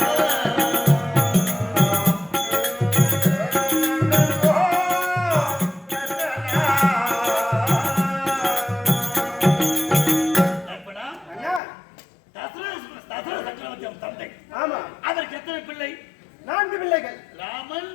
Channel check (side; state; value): right; drops out; at 11.6 s